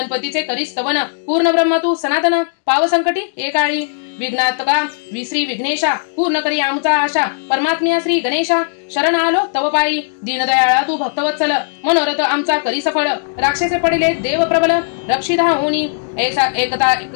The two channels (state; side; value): silent; right; digital silence